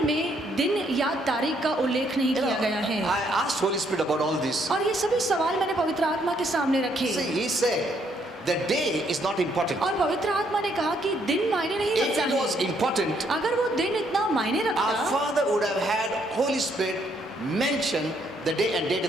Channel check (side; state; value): both; normal; correlation 0.71